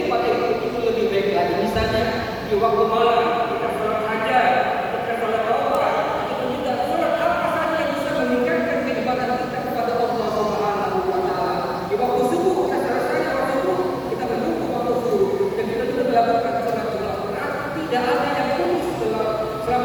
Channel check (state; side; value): identical; both; correlation 1.00